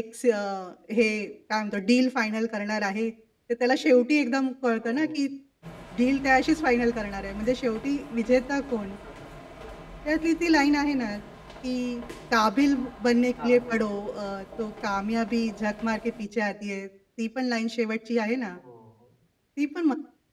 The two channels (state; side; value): identical; both; correlation 1.00